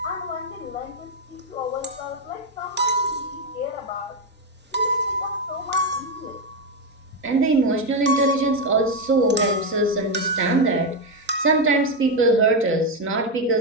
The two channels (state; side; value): normal; both; correlation 0.07